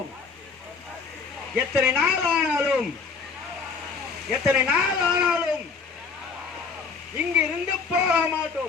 எத்தனை நாள் ஆனாலும், எத்தனை நாள் ஆனாலும் இங்கிருந்து போக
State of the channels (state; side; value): quieter; right; 5.1 dB